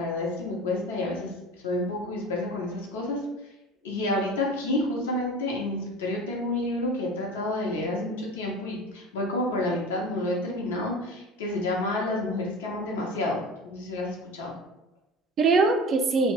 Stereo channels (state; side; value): normal; both; correlation 0.34